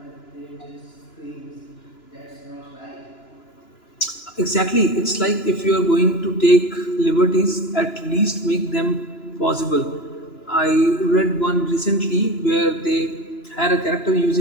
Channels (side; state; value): right; late; 2.9 ms